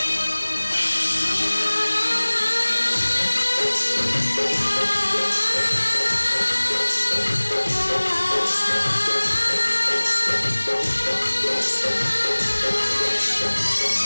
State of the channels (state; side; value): inverted; both; correlation -1.00